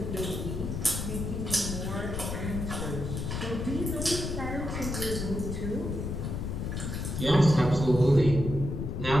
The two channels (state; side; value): noise; left; rumble, 4 dB below the sound